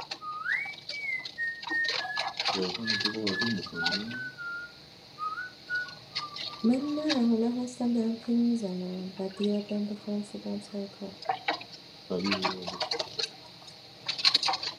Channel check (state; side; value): identical; both; correlation 1.00